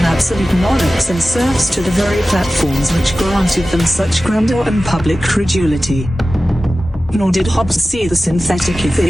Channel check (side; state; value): both; normal; correlation 0.95